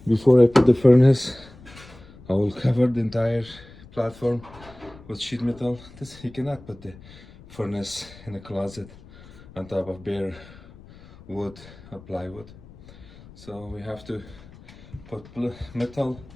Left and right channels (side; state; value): left; noise; rumble, 21 dB below the sound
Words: Before I put the furnace, I will cover the entire platform with sheet metal. This, you cannot put the furnace in a closet on top of bare wood or plywood. So we have to put metal,